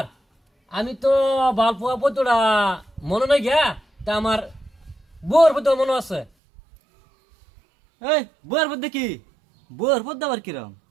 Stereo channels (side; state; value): left; drops out; at 6.3 s